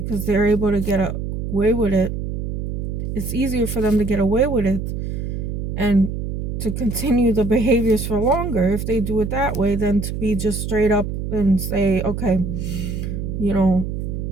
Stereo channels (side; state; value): right; noise; hum, 4 dB below the sound